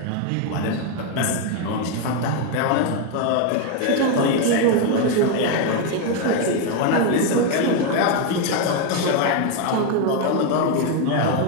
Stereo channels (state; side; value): different; both; correlation 0.02